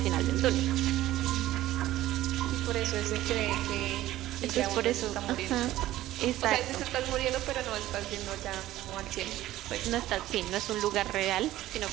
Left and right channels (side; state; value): left; quieter; 14.9 dB